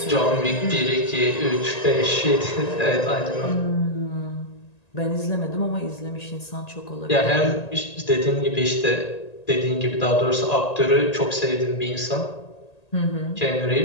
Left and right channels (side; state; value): right; late; 1.8 ms